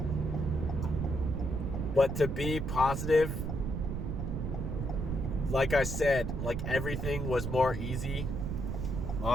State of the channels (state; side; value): noise; right; rumble, 3 dB below the sound